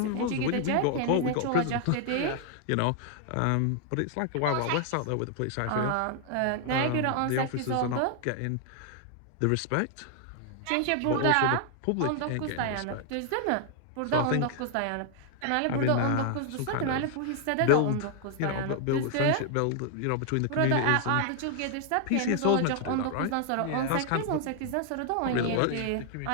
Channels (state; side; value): different; both; correlation 0.00